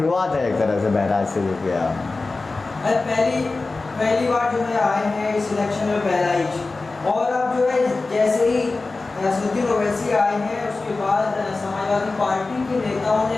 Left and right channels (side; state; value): right; quieter; 3.6 dB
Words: है एक तरह से बहराइच से जो किया। पहली बार जो है आए हैं इस इलेक्शन में बहराइच, और अब जो है जैसे ही असदुद्दीन ओवैसी आए हैं उसके बाद समाजवादी पार्टी के नेताओं ने